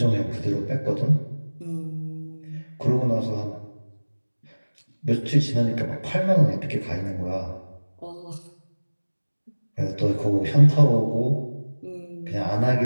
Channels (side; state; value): both; inverted; correlation -1.00